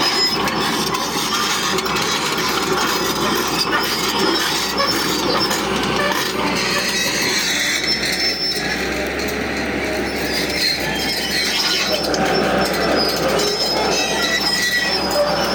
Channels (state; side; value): identical; both; correlation 1.00